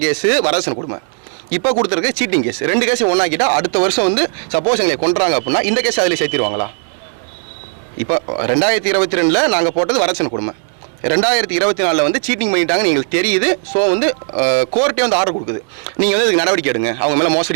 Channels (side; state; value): left; silent; 57 dB below the other